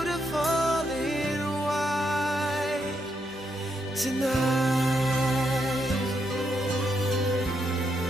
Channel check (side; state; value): both; normal; correlation 0.79